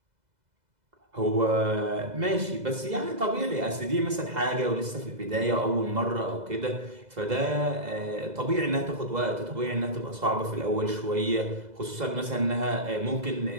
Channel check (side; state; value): left; late; 2.0 ms